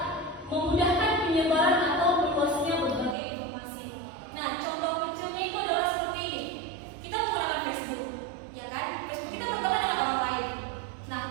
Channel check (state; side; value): drops out; left; at 3.2 s